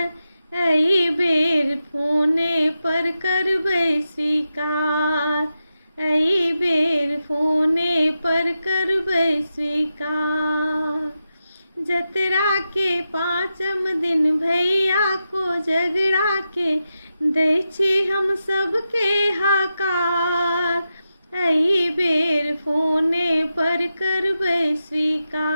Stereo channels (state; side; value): inverted; both; correlation -0.89